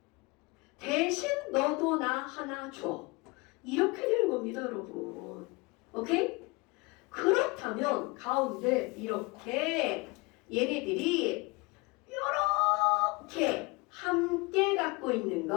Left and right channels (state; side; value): quieter; right; 26.1 dB